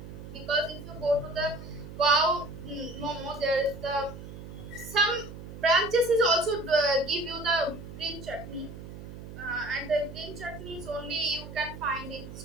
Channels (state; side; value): noise; right; hum, 12 dB below the sound